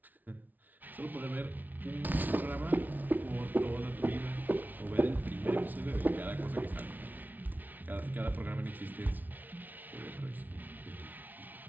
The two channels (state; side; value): late; left; 0.082 ms